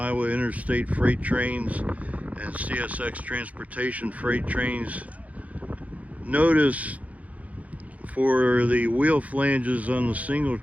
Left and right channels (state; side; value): late; left; 0.069 ms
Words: Interstate freight trains and CSX transportation freight trains. Notice for the wheel flanges on the single